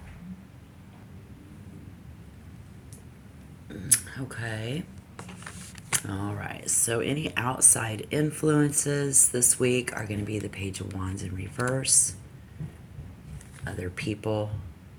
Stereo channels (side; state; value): both; identical; correlation 1.00